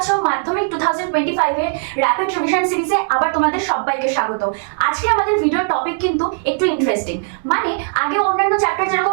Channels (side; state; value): left; silent; 58 dB below the other